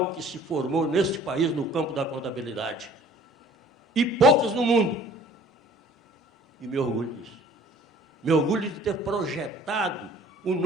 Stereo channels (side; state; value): both; normal; correlation 0.52